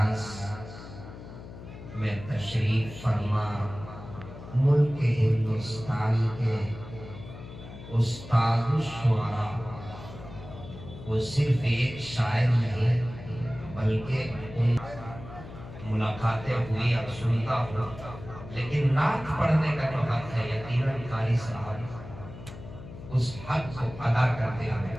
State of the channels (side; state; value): left; noise; hum, 14 dB below the sound